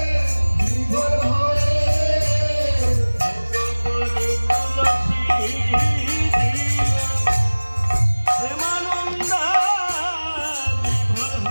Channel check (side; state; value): both; inverted; correlation -1.00